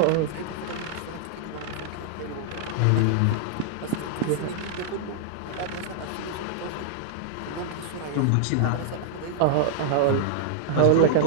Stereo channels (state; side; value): different; both; correlation -0.01